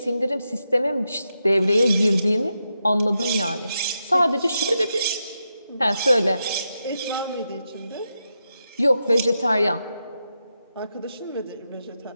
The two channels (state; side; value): inverted; both; correlation -0.86